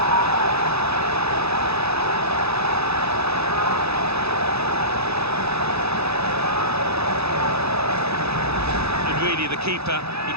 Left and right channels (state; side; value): late; left; 0.79 ms